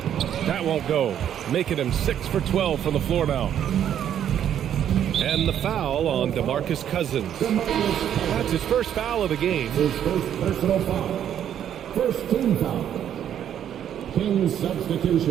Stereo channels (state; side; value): quieter; left; 9.9 dB